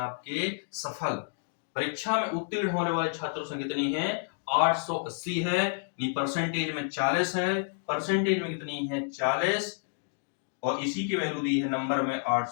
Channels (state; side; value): silent; right; digital silence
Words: सफल। परीक्षा में उत्तीर्ण होने वाले छात्रों संख्या कितनी है, 880 है, परसेंटेज में 40 है, परसेंटेज में कितनी है 40, और इसी की वैल्यू दी है नंबर में